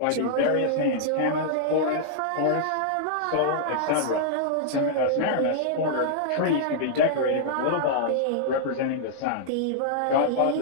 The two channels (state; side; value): different; both; correlation -0.02